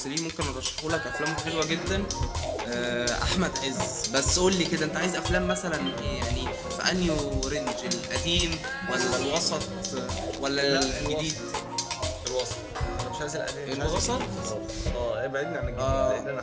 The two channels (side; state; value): both; identical; correlation 1.00